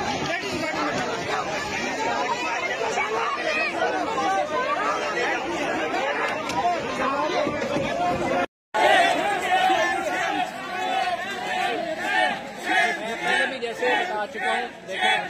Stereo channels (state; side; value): identical; both; correlation 1.00